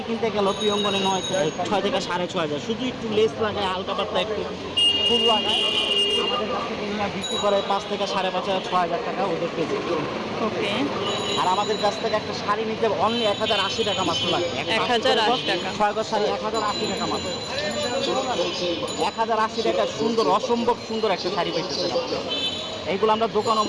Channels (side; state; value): both; identical; correlation 1.00